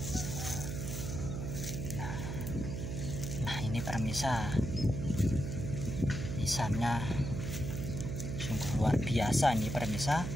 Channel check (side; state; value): right; noise; hum, 4 dB below the sound